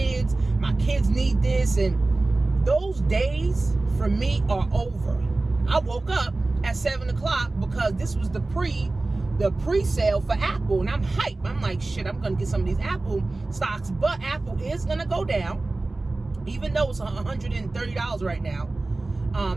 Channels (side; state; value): left; quieter; 3.1 dB